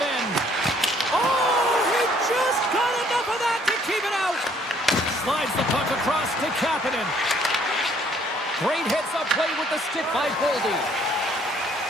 end. Oh, he just got enough of that to keep it out. Slides the puck across to Kapanen. Great hits up play with the stick by Boldy.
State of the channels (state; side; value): normal; both; correlation 0.63